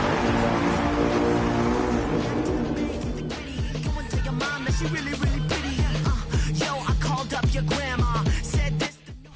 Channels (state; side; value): identical; both; correlation 1.00